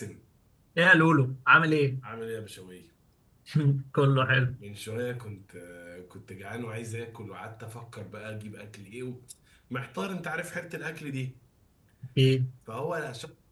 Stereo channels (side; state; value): both; identical; correlation 1.00